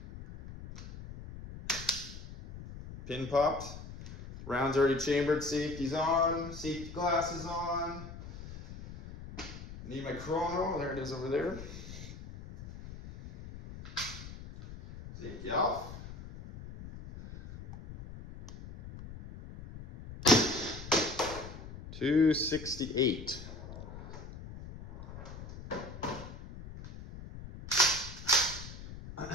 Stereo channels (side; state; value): left; noise; rumble, 12 dB below the sound